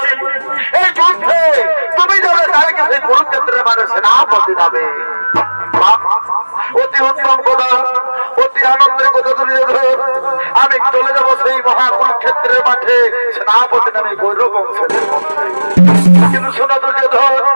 এই যুদ্ধে তুমি যাবে কালকে সেই কুরুক্ষেত্রের মানে সেনাপতি যাবে। অতি উত্তম কথা, অতি আনন্দের কথা দুর্যোধন। আমি চলে যাব সেই মহাকুরুক্ষেত্রের মাঠে সেনাপতি নামে গৌরব বংশের মধ্যে। কিন্তু শোনা দুর্যোধন,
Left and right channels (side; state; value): both; inverted; correlation -1.00